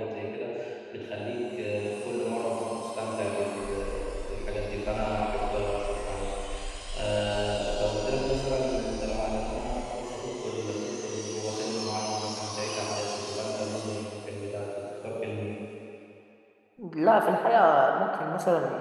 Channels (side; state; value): both; identical; correlation 1.00